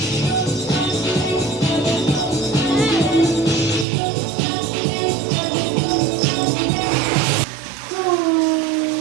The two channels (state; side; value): drops out; left; at 3.9 s